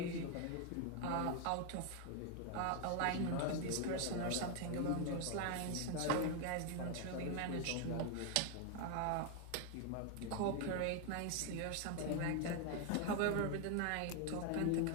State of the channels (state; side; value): different; both; correlation 0.01